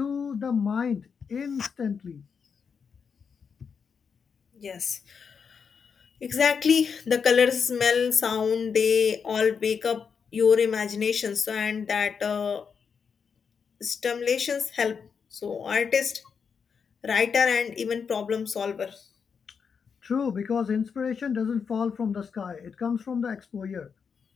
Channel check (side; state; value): right; quieter; 6.2 dB